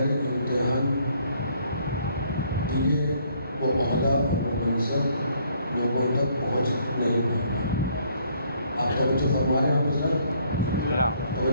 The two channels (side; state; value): both; inverted; correlation -0.65